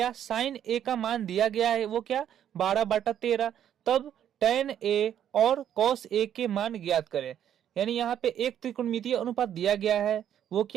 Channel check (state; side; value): quieter; left; 10.0 dB